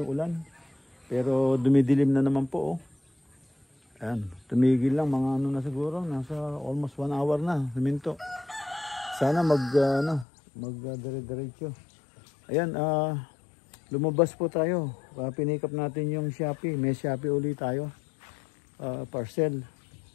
ulan. Pero dumidilim na naman po. Oh. Ayan, tumigil lang mga ano na siguro. Nasa almost 1 hour na. Huminto. Sana dire-diretso. Ayan, lumabas po tayo. Pinikap natin yung Shopee. May Shopee ulit tayo. Parcel.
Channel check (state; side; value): drops out; right; at 10.2 s